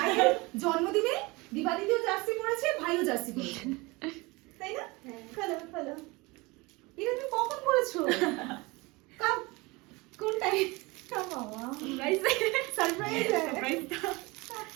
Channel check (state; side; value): quieter; left; 24.2 dB